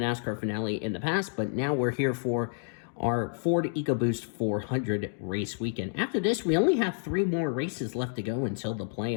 finale in the past, but now we're here for our Ford EcoBoost 400 race weekend. After this, we only have 3 more races left to go until the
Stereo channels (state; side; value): silent; right; digital silence